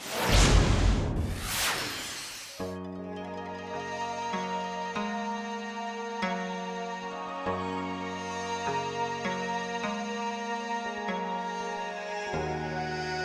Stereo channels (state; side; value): identical; both; correlation 1.00